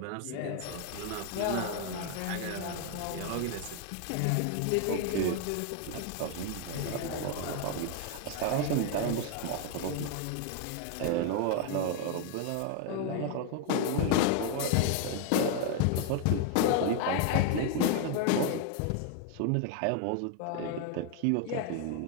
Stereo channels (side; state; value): both; different; correlation 0.01